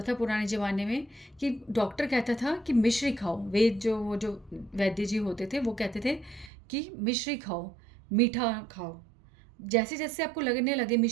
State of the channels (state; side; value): drops out; left; at 6.5 s